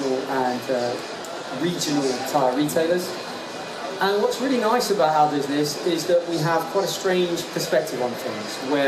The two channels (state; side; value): identical; both; correlation 1.00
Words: and regional tyre retailers. And what's really nice about our business is that we have quite a strange perspective on things,